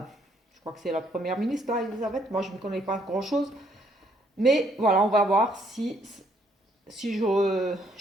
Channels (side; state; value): both; normal; correlation 0.69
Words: c'est la première ministre, là, Elisabeth. Moi, je ne connais pas grand-chose. Mais voilà, on va voir si je